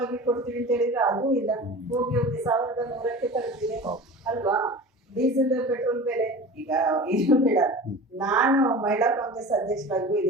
ಕೊಡ್ತೀವಿ ಅಂತ ಹೇಳಿದ್ರೆ ಅದು ಇಲ್ಲ, ಹೋಗಿ 1,100ಕ್ಕೆ ತಲುಪಿದೆ ಅಲ್ವಾ? ಡೀಸೆಲ್ ಪೆಟ್ರೋಲ್ ಬೆಲೆ ಈಗ ಇದು ಬೇಡ. ನಾನು ಮಹಿಳಾ ಕಾಂಗ್ರೆಸ್ ಅಧ್ಯಕ್ಷರಾಗಿ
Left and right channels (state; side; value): normal; both; correlation 0.36